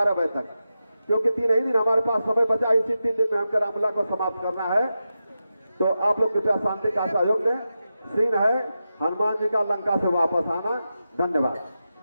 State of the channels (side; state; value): both; inverted; correlation -0.90